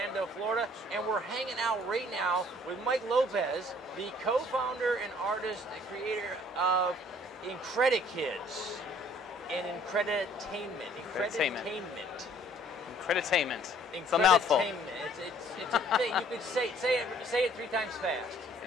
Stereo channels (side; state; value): both; normal; correlation 0.58